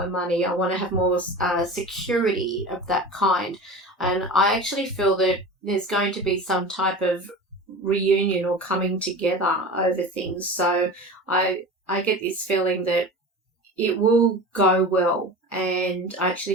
money. I want to have more security of that kind. And I actually feel that there's going to be some type of reunion or coming together over things. So I get this feeling that it will go well, and I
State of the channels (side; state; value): both; normal; correlation 0.33